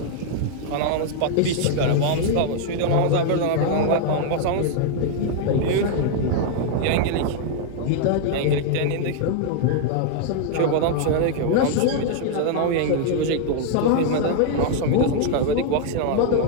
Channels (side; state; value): both; different; correlation 0.00